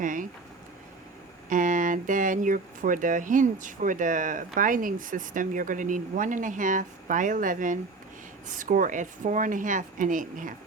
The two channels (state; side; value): quieter; left; 3.8 dB